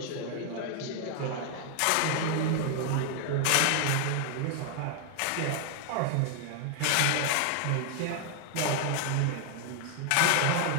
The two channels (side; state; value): both; different; correlation 0.00